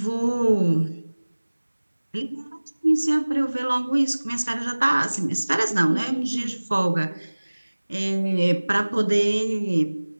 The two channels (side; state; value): both; inverted; correlation -1.00